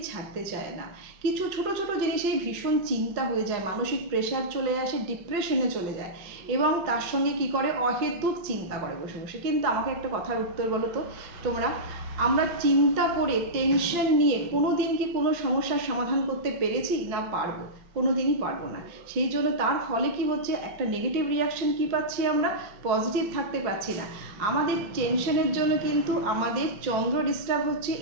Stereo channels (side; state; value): left; late; 5.9 ms